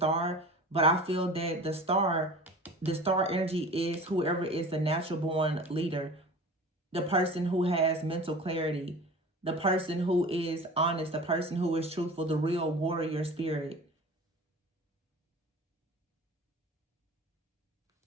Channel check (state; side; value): normal; both; correlation 0.38